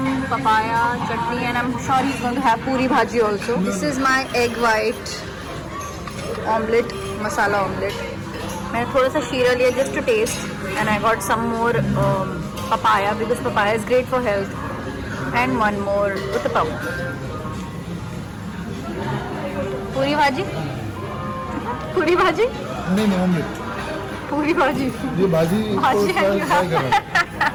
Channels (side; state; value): both; identical; correlation 1.00